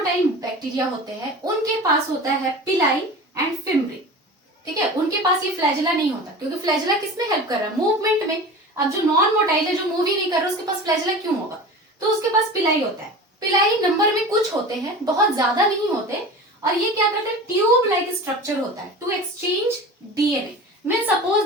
बैक्टीरिया होते हैं उनके पास होता है पिलाई एंड फिम्ब्री, ठीक है, उनके पास ये फ्लैजेला नहीं होता, क्योंकि फ्लैजेला किसमें हेल्प कर रहा है? मूवमेंट में। अब जो नॉन मोटाइल है, जो मूव ही नहीं कर रहा, उसके पास फ्लैजेला क्यों होगा? तो उसके पास पिलाई होता है। पिलाई नंबर में कुछ होते हैं, बहुत ज्यादा नहीं होते, और ये क्या करते हैं? ट्यूब लाइक स्ट्रक्चर होता है to exchange DNA. Mean suppose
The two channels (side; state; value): both; normal; correlation 0.34